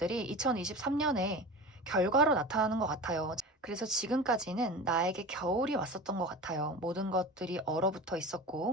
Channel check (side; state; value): both; normal; correlation 0.32